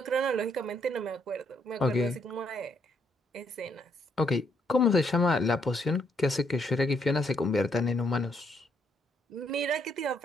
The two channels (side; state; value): both; normal; correlation 0.73